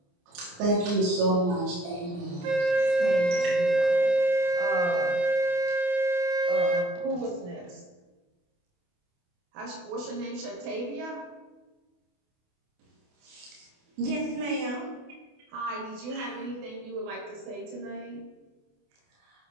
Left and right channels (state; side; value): late; left; 28 ms